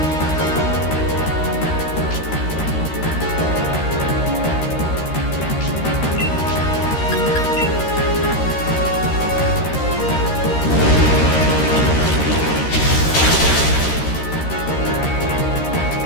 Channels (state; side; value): late; right; 13 ms